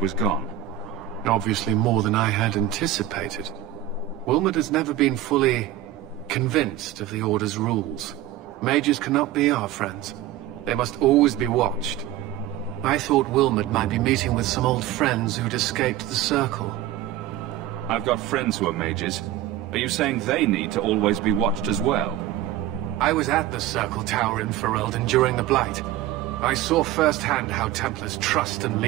gone? Obviously more than I had anticipated. Wilmod has never been fully convinced of the Order's rules. Mages cannot be our friends. They must always be watched. I thought Wilmod might be meeting with some old friends who'd escaped the Circle. I've got friends who are mages. Are you saying they need to always be watched as well? I was at the Circle Tower in Ferelden during the Blight. I saw firsthand how Templars' trust and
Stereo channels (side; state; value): left; quieter; 13.1 dB